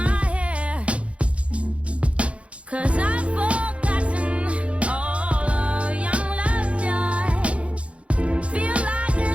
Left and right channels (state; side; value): late; left; 0.062 ms